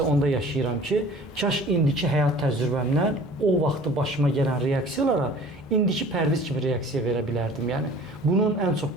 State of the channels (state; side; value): normal; both; correlation 0.46